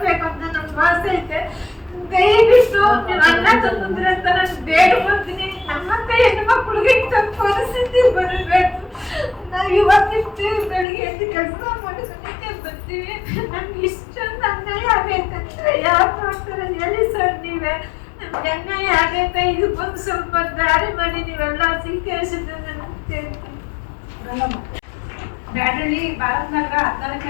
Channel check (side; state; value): right; drops out; at 10.9 s